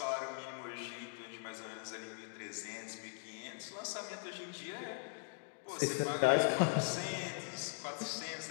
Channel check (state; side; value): quieter; right; 38.9 dB